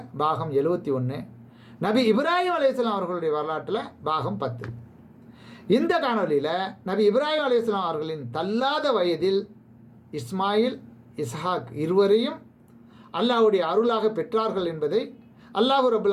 பாகம் 71, நபி இப்ராஹிம் அலைஹிஸ்ஸலாம் அவர்களுடைய வரலாற்றில் பாகம் 10. இந்த காணொலியில் நபி இப்ராஹிம் அலைஹிஸ்ஸலாம் அவர்களின் தள்ளாத வயதில் இஸ்மாயில், இஸ்ஹாக் இருவரையும் அல்லாஹ்வுடைய அருளாக பெற்றார்கள் என்பதை அல்லாஹ் ரப்பல்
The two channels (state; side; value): identical; both; correlation 1.00